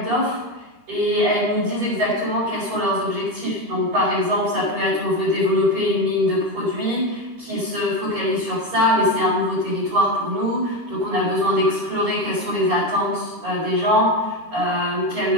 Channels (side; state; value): left; late; 13 ms